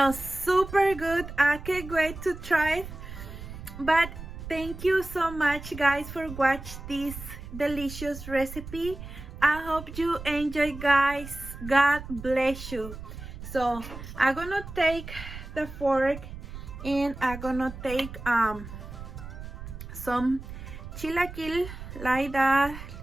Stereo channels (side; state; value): right; noise; rumble, 11 dB below the sound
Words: super good. I can't wait to try it. But thank you so much guys for watching this delicious recipe. I hope you enjoy guys. God bless you. So I'm gonna take the fork, and I'm gonna take some chilaquil like that